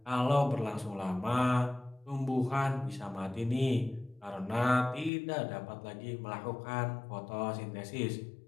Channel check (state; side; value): drops out; right; at 5.1 s